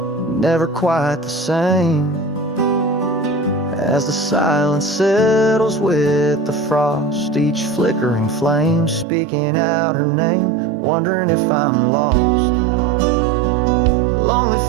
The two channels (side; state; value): left; drops out; at 9.1 s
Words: never quite the same, as the silence settles with the frost, each flickering flame speaking out her name, wondering if I'm lost. The lonely